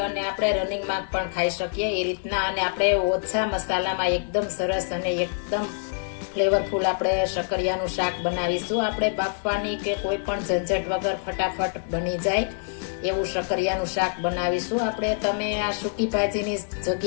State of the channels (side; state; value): right; silent; digital silence